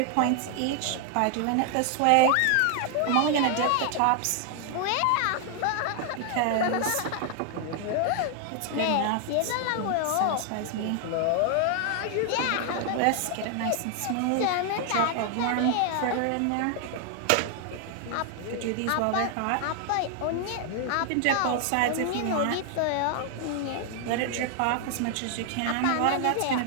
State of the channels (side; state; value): both; different; correlation 0.00